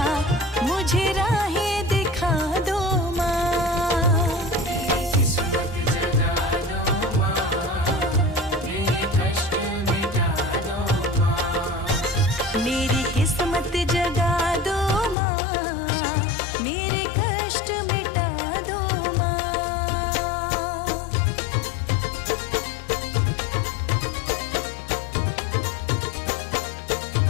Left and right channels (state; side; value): drops out; right; at 15.2 s